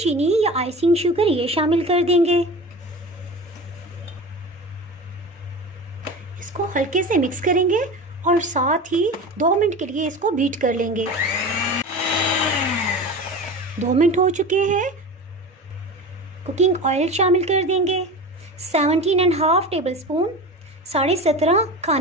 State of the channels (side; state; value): both; normal; correlation 0.31